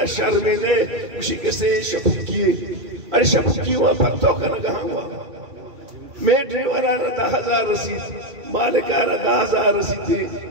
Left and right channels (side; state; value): left; late; 3.2 ms